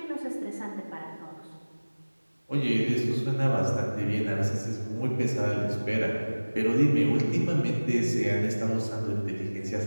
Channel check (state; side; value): inverted; both; correlation -1.00